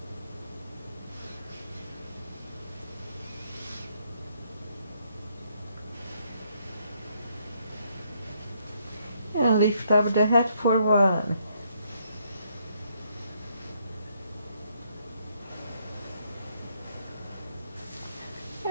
And lift up the head for 1.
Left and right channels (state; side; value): inverted; both; correlation -0.71